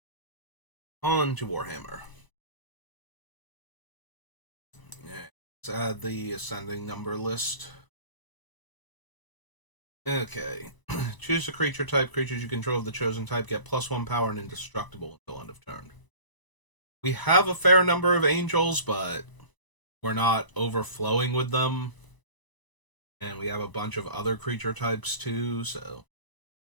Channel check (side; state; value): right; late; 1.0 ms